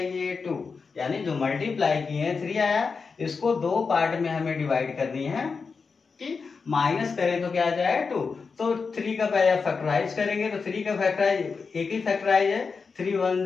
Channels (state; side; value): quieter; right; 5.0 dB